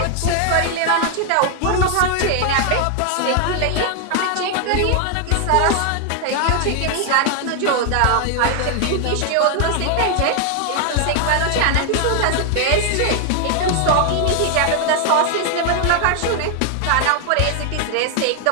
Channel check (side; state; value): both; different; correlation 0.00